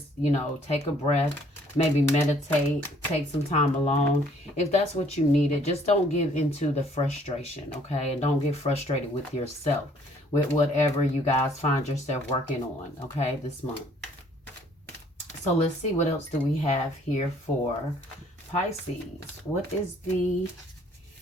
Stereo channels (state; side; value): normal; both; correlation 0.61